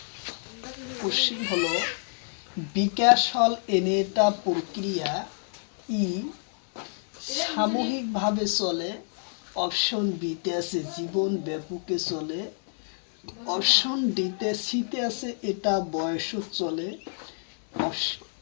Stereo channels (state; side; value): silent; right; digital silence